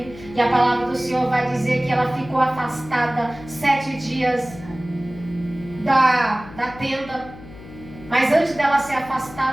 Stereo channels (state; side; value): noise; left; hum, 17 dB below the sound